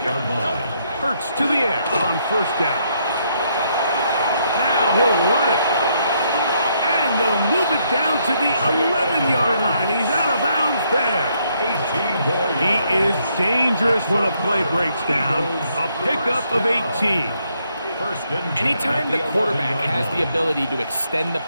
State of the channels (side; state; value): both; inverted; correlation -0.73